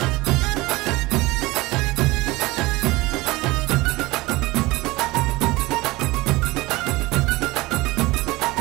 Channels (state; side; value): quieter; left; 21.0 dB